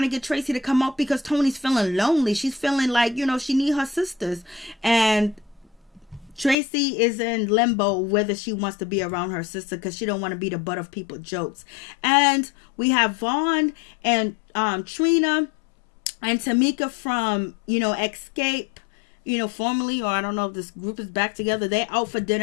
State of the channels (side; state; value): right; drops out; at 6.6 s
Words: to get Tracy to come up because Toni's feeling lonely. She's feeling like, she need her sisters. And Tracy is in limbo whether she wants to be around her sister because she don't want to be the butt of people's jokes. And we have Vaughn and Trina and Tamika from, Escape. Formally, or I don't know if this group is back together. They're out for